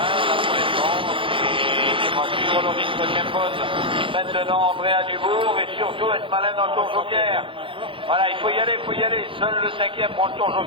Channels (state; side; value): late; left; 0.25 ms